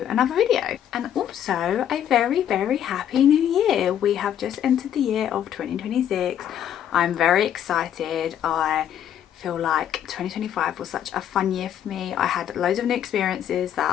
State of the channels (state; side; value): quieter; right; 10.1 dB